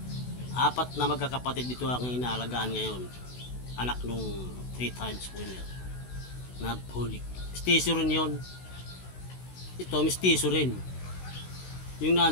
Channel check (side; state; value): right; late; 16 ms